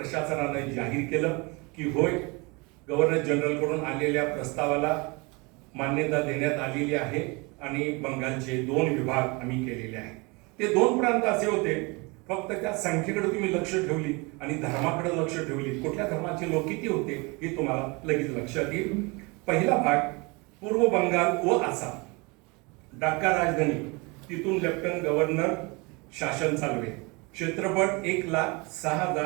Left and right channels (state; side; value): quieter; left; 27.7 dB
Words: जाहीर केलं की होय, गव्हर्नर जनरलकडून आलेल्या प्रस्तावाला मान्यता देण्यात आलेली आहे आणि बंगालचे 2 विभाग आम्ही केलेले आहेत. ते 2 प्रांत असे होते, फक्त त्या संख्येकडे तुम्ही लक्ष ठेवली आणि धर्माकडे लक्ष ठेवली, कुठल्या धर्माचे लोक किती होते हे तुम्हाला लगेच लक्षात येईल. पहिला भाग पूर्व बंगाल व आसाम, ढाका राजधानी, तिथून लेफ्टनंट गव्हर्नर शासन चालवे. क्षेत्रफळ